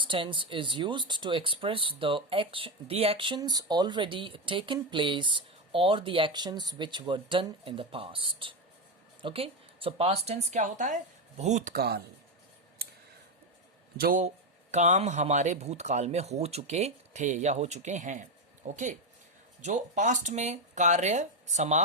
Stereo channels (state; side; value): normal; both; correlation 0.10